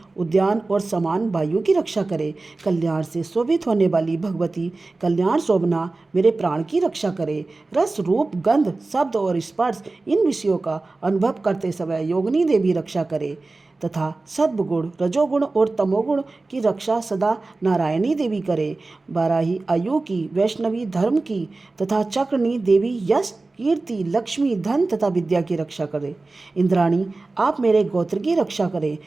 उद्यान और समान वायु की रक्षा करे। कल्याण से शोभित होने वाली भगवती कल्याण शोभना मेरे प्राण की रक्षा करे। रस, रूप, गंध, शब्द और स्पर्श इन विषयों का अनुभव करते समय योगिनी देवी रक्षा करे तथा सद्गुण, रजोगुण और तमोगुण की रक्षा सदा नारायणी देवी करे। बाराही आयु की, वैष्णवी धर्म की तथा चक्रनी देवी यश, कीर्ति, लक्ष्मी, धन तथा विद्या की रक्षा करे। इंद्राणी आप मेरे गोत्र की रक्षा करें।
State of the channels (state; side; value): quieter; left; 3.4 dB